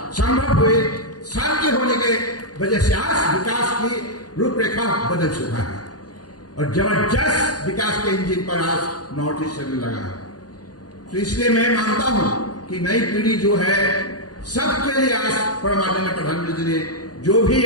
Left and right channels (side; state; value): right; late; 0.69 ms